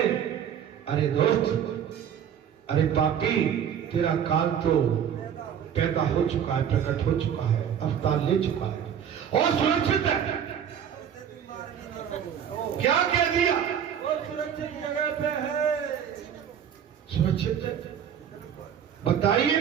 अरे दोस्त, अरे पापी तेरा काल तो पैदा हो चुका है, प्रकट हो चुका है, अवतार ले चुका है और सुरक्षित है। क्या कह दिया? और सुरक्षित जगह पे है। सुरक्षित है? बताइए।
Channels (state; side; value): quieter; left; 8.7 dB